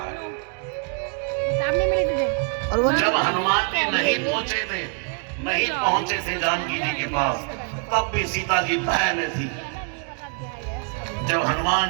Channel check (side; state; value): left; quieter; 36.6 dB